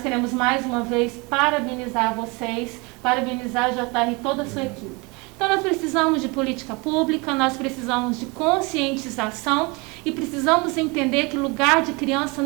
mais uma vez parabenizar vocês, parabenizar a JR e toda a sua equipe. Então nós precisamos de política pública, nós precisamos de conscientização e precisamos entender que lugar de criança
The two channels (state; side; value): quieter; left; 27.7 dB